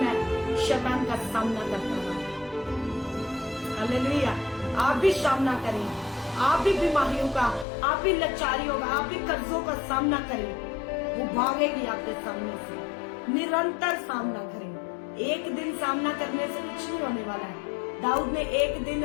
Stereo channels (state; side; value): drops out; right; at 7.7 s